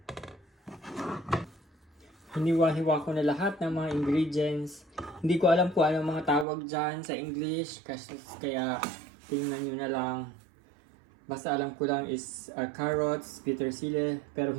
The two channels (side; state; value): left; drops out; at 6.5 s